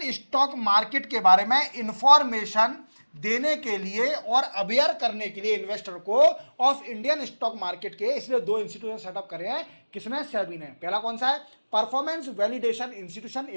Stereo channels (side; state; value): both; inverted; correlation -1.00